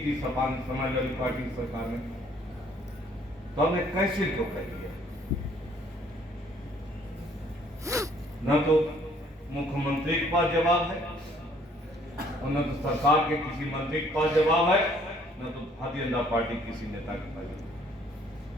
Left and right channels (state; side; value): normal; both; correlation 0.61